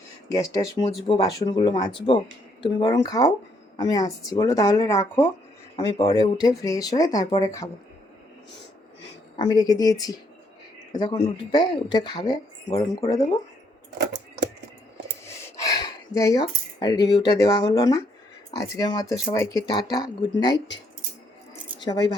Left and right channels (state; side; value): normal; both; correlation 0.71